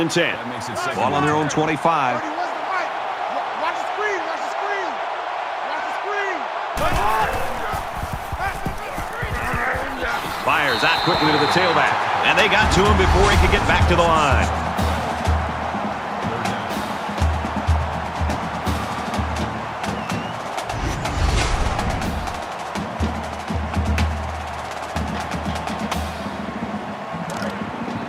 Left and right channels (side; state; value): both; identical; correlation 1.00